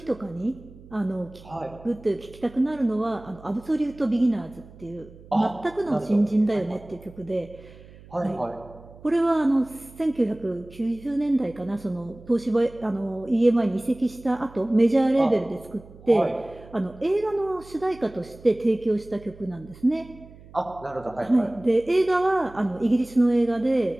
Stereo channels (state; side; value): noise; right; hum, 21 dB below the sound